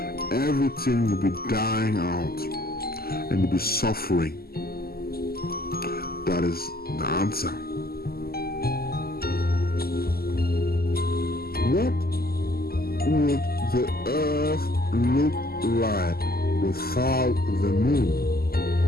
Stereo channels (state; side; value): late; right; 0.45 ms